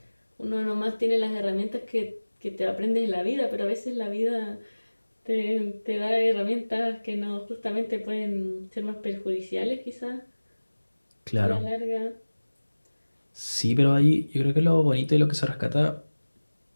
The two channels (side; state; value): both; inverted; correlation -1.00